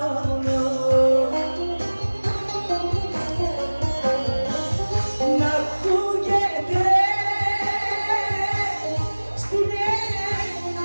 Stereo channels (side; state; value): both; inverted; correlation -1.00